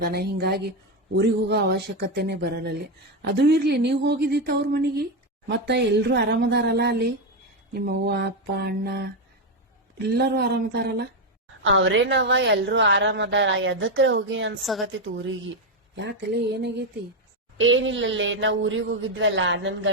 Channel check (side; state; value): both; normal; correlation 0.07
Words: ಹಿಂಗಾಗಿ ಊರಿಗೆ ಹೋಗೋ ಅವಶ್ಯಕತೆನೆ ಬರಲ್ಲಲ್ಲಿ. ಅದು ಇರ್ಲಿ, ನೀವ್ ಹೋಗಿದ್ದಿತ್ತ ಅವ್ರ ಮನಿಗೆ? ಮತ್ತ ಎಲ್ರು ಆರಾಮದಾರಲ್ಲ ಅಲ್ಲಿ? ನಿಮ್ಮ ಅವ್ವ ಅಪ್ಪ ಅಣ್ಣ ಎಲ್ಲರೂ ಆರಾಮದಾರಲ್ಲ? ಅವ್ರೇನವ ಎಲ್ರು ಆರಾಮದಾರ. ಎದಕ್ರೆ ಹೋಗಿ ಅನ್ಸಾಗತ್ತಿತ್ ಊರಿಗೆ. ಯಾಕಲೆ ಏನಾಗೈತಿ? ಏನಿಲ್ಲಲ್ಲೇ, ನಾವ್ ಊರಿಗೆ ಹೋಗಿದ್ವಲ್ಲ, ನನ್